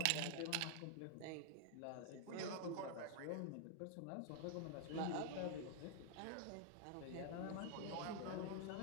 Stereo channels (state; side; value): different; both; correlation 0.00